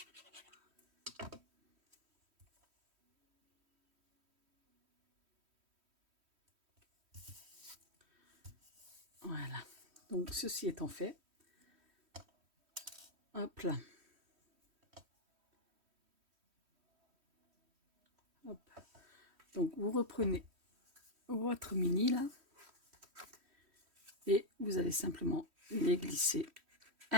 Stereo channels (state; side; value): late; left; 3.1 ms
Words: Voilà. Donc ceci étant fait, hop là. Hop. Donc vous reprenez votre mini là et vous allez simplement les glisser